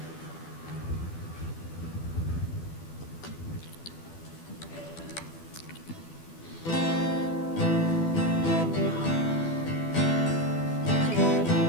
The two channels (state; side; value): late; right; 12 ms